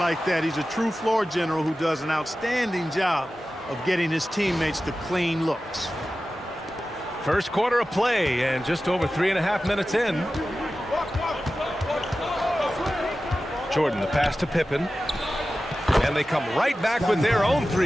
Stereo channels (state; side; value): normal; both; correlation 0.94